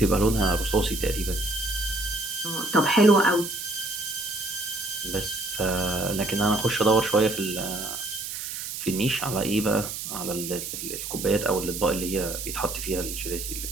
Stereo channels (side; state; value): right; noise; hiss, 6 dB below the sound